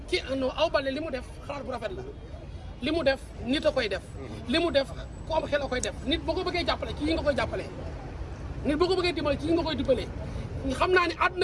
non Awa Baldé li mu def xalaat bu rafet la li mu def nit a koy def li mu def ku am xel a koy def nit boo ko bëggee jàppale ci yi nga koy jàppale nit boo ko bëggee dimbale ci yi nga koy dimbalee xam naa ne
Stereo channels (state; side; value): identical; both; correlation 1.00